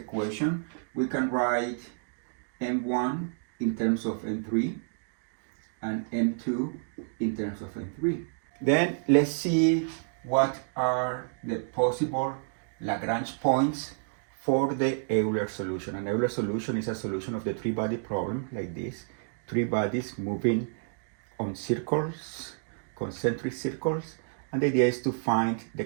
we can write M1 in terms of M3 and M2 in terms of M3. Then let's see what are the possible Lagrange points for the Euler solution. An Euler solution is a solution of the three-body problem like this. Three bodies moving on circles, concentric circles. And the idea is to find the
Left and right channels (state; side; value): silent; left; digital silence